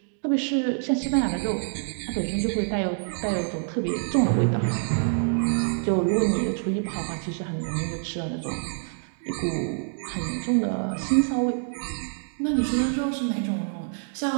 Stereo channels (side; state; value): left; silent; digital silence